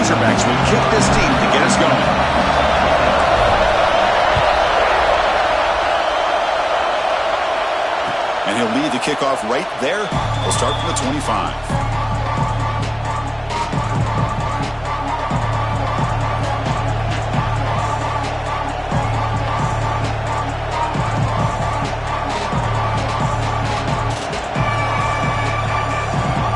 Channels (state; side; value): identical; both; correlation 1.00